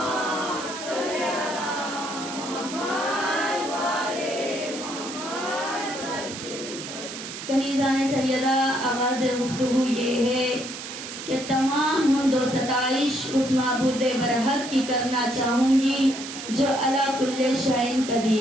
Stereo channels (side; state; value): right; noise; hiss, 9 dB below the sound